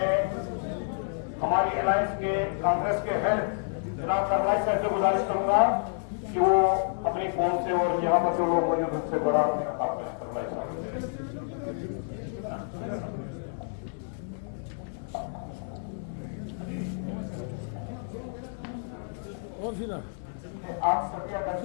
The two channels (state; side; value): silent; right; digital silence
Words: हमारी अलायंस के कांग्रेस के हेड जनाब सरवाई साहब से गुजारिश करूंगा कि वो अपनी फोन से और यहाँ पर जो लोग मौजूद उनसे बड़ा आपने सरवाई साहब और फिर आप सभी